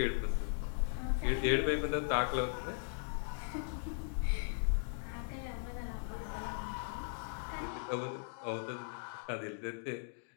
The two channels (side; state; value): right; silent; digital silence